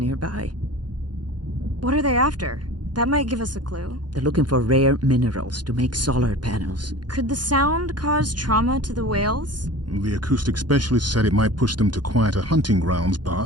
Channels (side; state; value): left; late; 0.70 ms